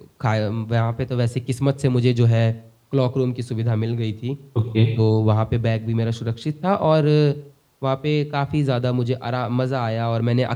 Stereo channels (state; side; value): identical; both; correlation 1.00